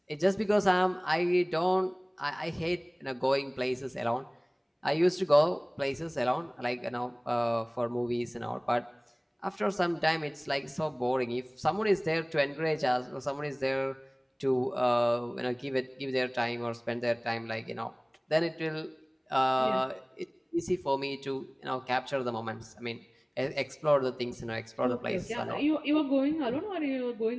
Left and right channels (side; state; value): both; identical; correlation 1.00